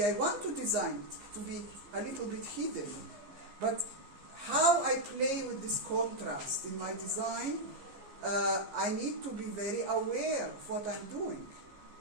I want to design it to be a little bit hidden. But how I play with this contrast in my design, I need to be very aware of what I'm doing.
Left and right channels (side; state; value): left; late; 15 ms